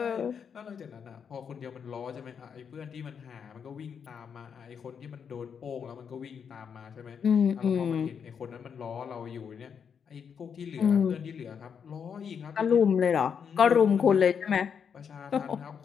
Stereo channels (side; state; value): right; quieter; 7.0 dB